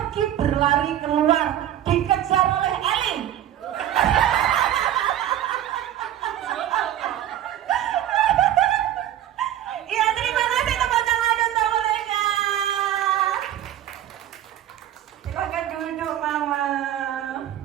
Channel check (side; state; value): left; quieter; 11.8 dB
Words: berlari keluar, dikejar oleh Eli. Iya, terima kasih tepuk tangan untuk mereka. Silakan duduk Mama.